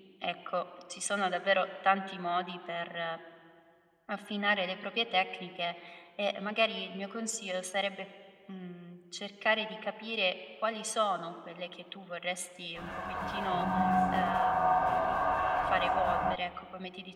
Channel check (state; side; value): identical; both; correlation 1.00